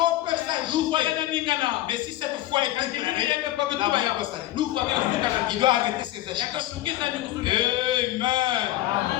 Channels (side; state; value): right; quieter; 15.2 dB